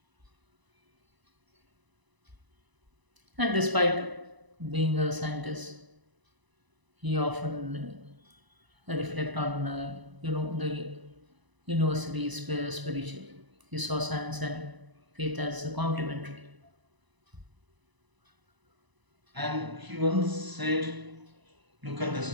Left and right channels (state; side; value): late; left; 1.0 ms